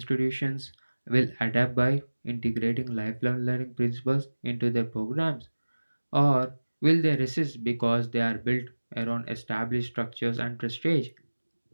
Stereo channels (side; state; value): both; inverted; correlation -1.00